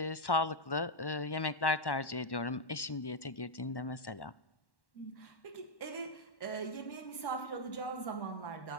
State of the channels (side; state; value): right; late; 1.1 ms